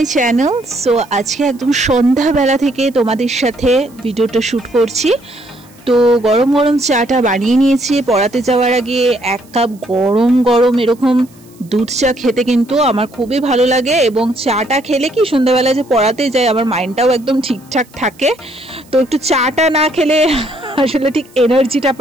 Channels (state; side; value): noise; right; hiss, 28 dB below the sound